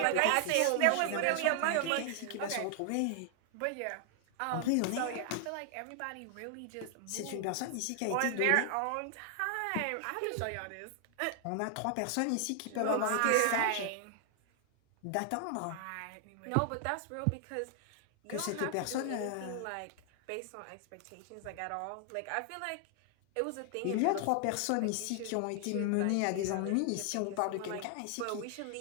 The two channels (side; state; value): both; different; correlation 0.00